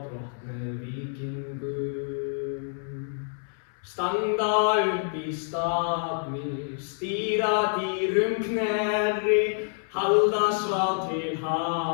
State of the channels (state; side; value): silent; right; 58 dB below the other